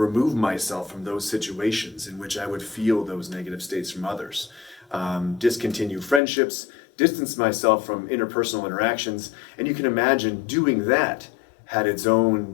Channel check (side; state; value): right; drops out; at 6.2 s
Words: myself from those situations in which I would feel those negative states from others. Discontinue friendships, distance myself from interpersonal interactions, and you can imagine doing that had its